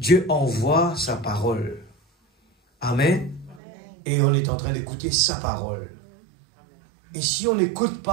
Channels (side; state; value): left; drops out; at 3.6 s